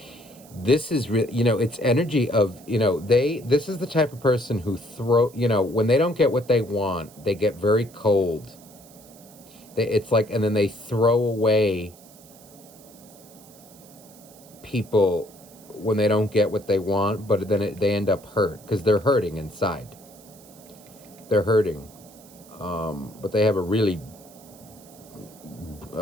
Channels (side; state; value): right; noise; hiss, 23 dB below the sound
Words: This is really, you know, it's energy of, you know, this is the type of person who you know, when they don't get what they want, they get very cold. It's like, and then they throw away people when they don't get what they want, but then they end up hurt because they're hurting inside. They're hurting. But they have a really,